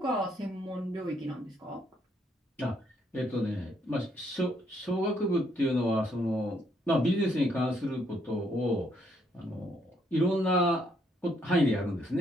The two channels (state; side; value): normal; both; correlation 0.71